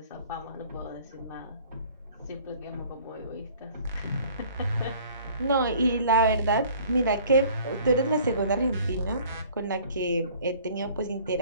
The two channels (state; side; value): inverted; both; correlation -0.52